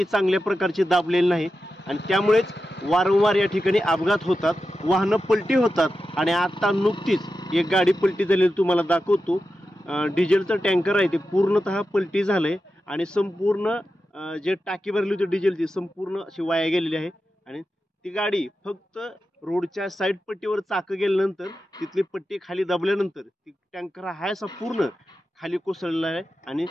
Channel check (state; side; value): normal; both; correlation 0.91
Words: चांगल्या प्रकारची दाबलेली नाही आणि त्यामुळेच वारंवार या ठिकाणी अपघात होतात, वाहनं पलटी होतात. आणि आता नुकतीच एक गाडी पलटी झालेली तुम्हाला दाखवतो. डिझेलचं टँकर आहे ते पूर्णतः पलटी झालंय आणि संपूर्ण जे टाकी भरली होती डिझेलची संपूर्ण अशी वाया गेलेली आहे. आणि ती गाडी फक्त रोडच्या साईड पट्टीवर चाकं गेल्यानंतर तिथली पट्टी खाली दाबल्यानंतर ती टँकर हा असा पूर्ण खाली कोसळलेला आहे आणि